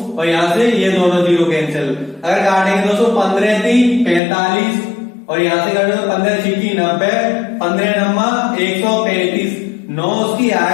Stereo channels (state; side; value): drops out; right; at 4.2 s